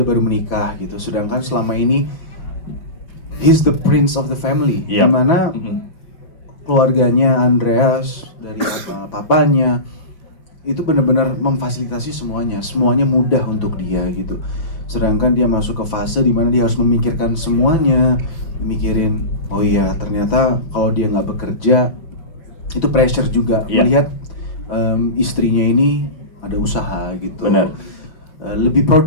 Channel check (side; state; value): right; late; 6.0 ms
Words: baru menikah gitu. Sedangkan selama ini he's the prince of the family. Iya. Dimana keluarganya Andreas dari papanya itu benar-benar memfasilitasi semuanya mudah untuk dia gitu. Sedangkan dia masuk ke fase dimana dia harus memikirkan semuanya, mikirin oh iya ternyata kalau dia nggak bekerja itu pressure juga. Melihat istrinya ini ada usaha gitu. Benar. Lebih